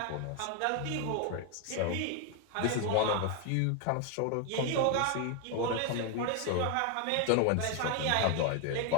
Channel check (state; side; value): different; both; correlation 0.01